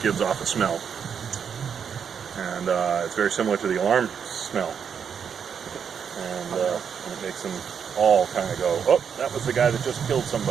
gives off a smell. And it's very similar to the alarm smell. And it makes them all kind of go, oh, that was the guy that just killed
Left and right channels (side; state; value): left; quieter; 7.3 dB